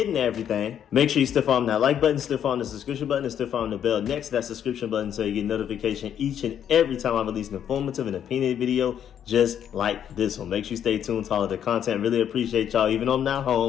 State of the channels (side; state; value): right; quieter; 9.4 dB